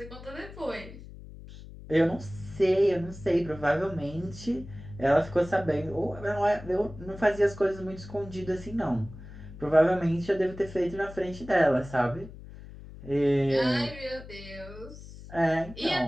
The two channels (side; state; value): left; noise; hum, 15 dB below the sound